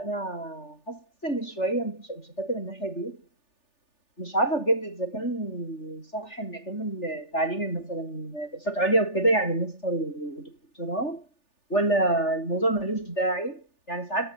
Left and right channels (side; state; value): right; late; 3.4 ms